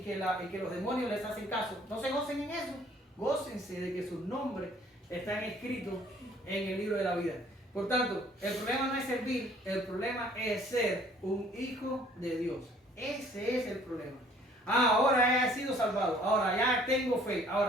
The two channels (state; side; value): normal; both; correlation 0.57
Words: que los demonios les hacen caso. No se gocen en eso. Gócense de que sus nombres están escritos en el libro de la vida. Por tanto, el problema no es servir, el problema es ser un hijo de Dios. Ese es el problema. Ahora he sido salvado, ahora ya tengo fe,